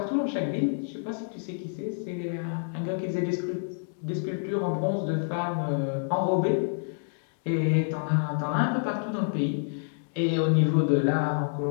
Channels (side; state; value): right; silent; digital silence